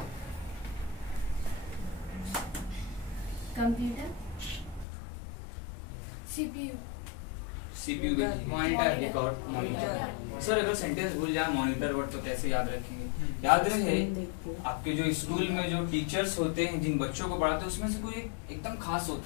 computer, CPU, CPU, monitor, record, monitor. Sir अगर सेंटेंस भूल जाए मॉनिटर वर्ड तो कैसे याद रखेंगे? याद रहे आपके जो स्कूल में जो टीचर्स होते हैं, जिन बच्चों को पढ़ाते हैं, उसमें से कोई एकदम खास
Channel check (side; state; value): right; drops out; at 4.9 s